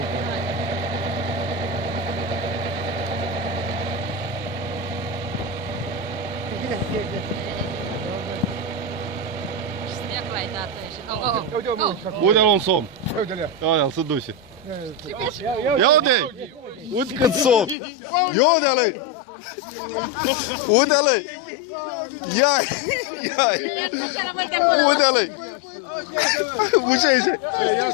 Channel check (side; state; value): right; drops out; at 17.8 s